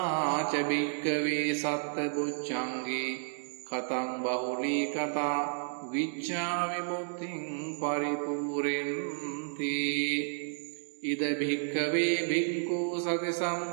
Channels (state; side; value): silent; left; digital silence